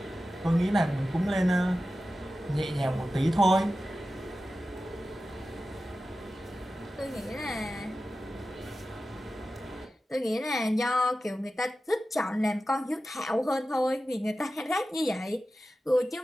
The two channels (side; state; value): both; normal; correlation 0.94